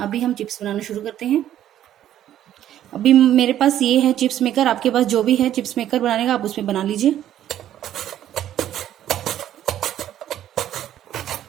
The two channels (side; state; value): left; quieter; 11.6 dB